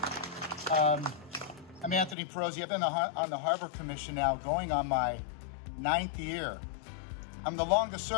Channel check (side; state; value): right; drops out; at 2.1 s